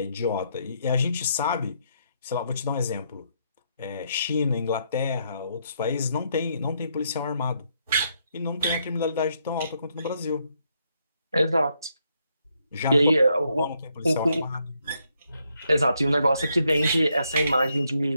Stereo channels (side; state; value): both; inverted; correlation -0.76